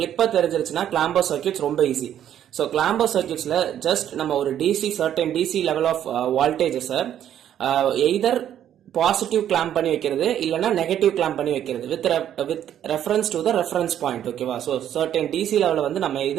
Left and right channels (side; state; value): left; quieter; 10.5 dB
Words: தெரிஞ்சிருச்சுன்னா கிளாம்பர் சர்க்கியூட்ஸ் ரொம்ப ஈஸி. ஸோ கிளாம்பர் சர்க்கியூட்ஸ்ல ஜஸ்ட் நம்ம ஒரு DC certain DC level of voltages either positive clamp பண்ணி வைக்கிறது இல்லனா நெகட்டிவ் கிளாம்ப் பண்ணி வைக்கிறது with reference to the reference point. ஓகேவா? சோ சர்டன் டிசி லெவல்ல வந்து நம்ம